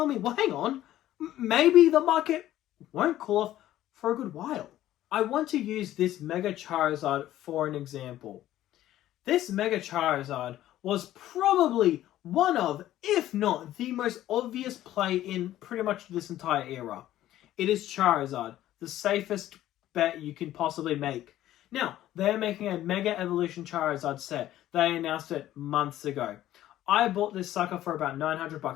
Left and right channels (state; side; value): quieter; right; 13.5 dB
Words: me, well, hang on. Maybe the market won't cool off for a good while. I want to use this Mega Charizard for an example. This Mega Charizard was probably one of, if not the most obvious play in pretty much this entire era. It is Charizard, the safest bet you can possibly make. Now, they're making a Mega Evolution Charizard set. They announced it months ago. I bought this sucker for about